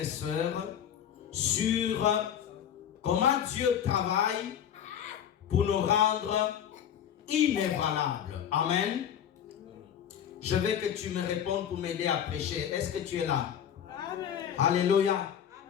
sœurs, sur comment Dieu travaille pour nous rendre inébranlables. Amen. Je veux que tu me répondes pour m'aider à prêcher. Est-ce que tu es là? Amen. Alléluia.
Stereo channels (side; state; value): right; quieter; 9.2 dB